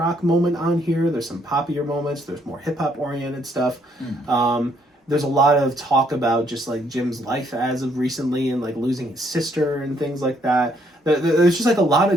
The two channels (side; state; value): both; normal; correlation 0.69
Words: moment on here. There's some poppier moments. There's more hip hop oriented stuff. There's a lot of talk about just like Jim's life as of recently and like losing his sister and things like that. There's just like a lot